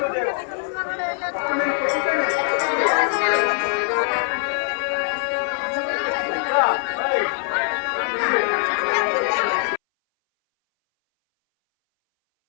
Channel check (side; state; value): right; silent; 61 dB below the other